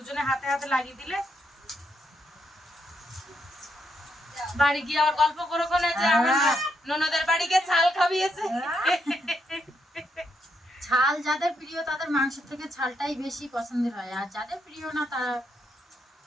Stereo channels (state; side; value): normal; both; correlation 0.79